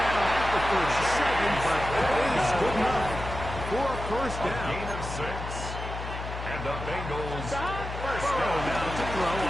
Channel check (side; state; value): left; noise; hum, 7 dB below the sound